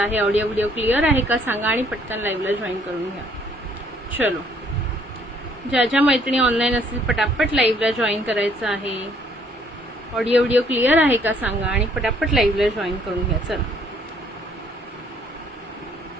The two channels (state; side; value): normal; both; correlation 0.64